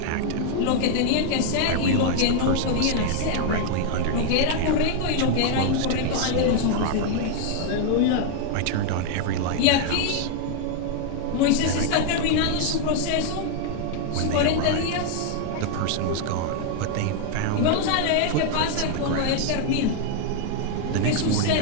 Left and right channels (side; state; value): both; different; correlation 0.00